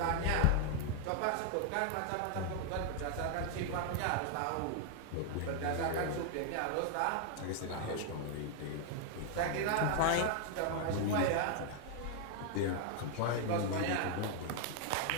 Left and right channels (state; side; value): different; both; correlation 0.00